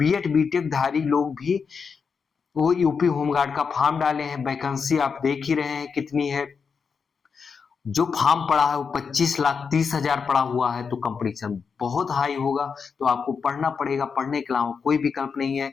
बीटेक धारी लोग भी वो यूपी होमगार्ड का फॉर्म डाले हैं। वैकेंसी आप देख ही रहे हैं कितनी है। जो फॉर्म पड़ा है वो 25,30,000 पड़ा हुआ है, तो कंपटीशन बहुत हाई होगा। तो आपको पढ़ना पड़ेगा, पढ़ने के अलावा कोई विकल्प नहीं है।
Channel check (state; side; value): quieter; right; 5.8 dB